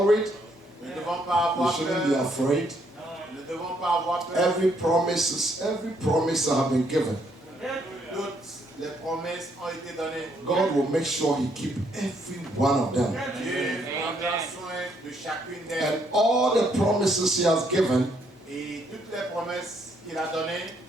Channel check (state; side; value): normal; both; correlation 0.71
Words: We shouldn't be afraid. Every promise that have been given, God will make sure he keep every one of them. And all the promises he has given